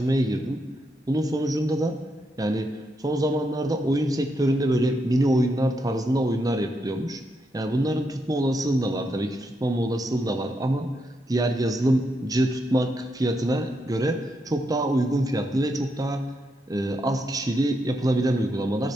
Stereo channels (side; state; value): both; normal; correlation 0.81